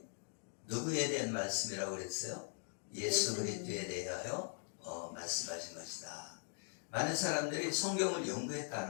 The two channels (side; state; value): right; silent; 51 dB below the other